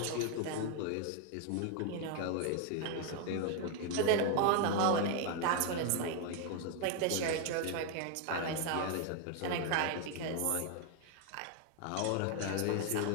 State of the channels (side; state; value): both; different; correlation 0.01